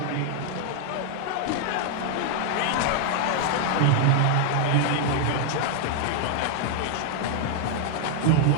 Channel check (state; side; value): different; both; correlation 0.00